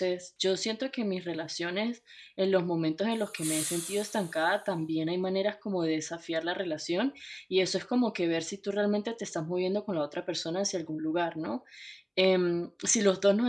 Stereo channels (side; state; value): both; identical; correlation 1.00